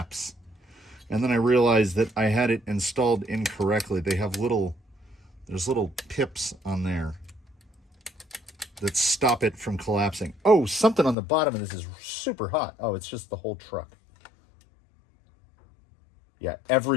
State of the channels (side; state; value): right; drops out; at 11.2 s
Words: And then I realized that I had it installed incorrectly. They have there's little pips on there that stop it from collapsing. Oh, something on the bottom of this is super hot. Oh, it's just the whole truck. Yeah,